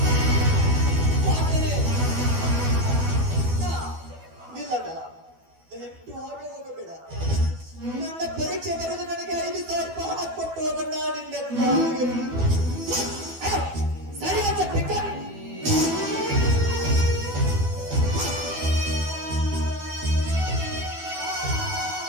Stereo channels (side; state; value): left; late; 12 ms